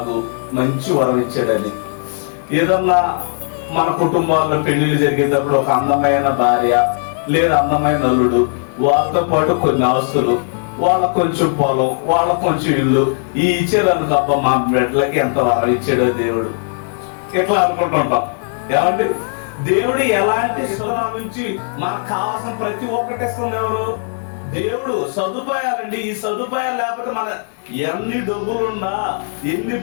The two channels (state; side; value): silent; right; digital silence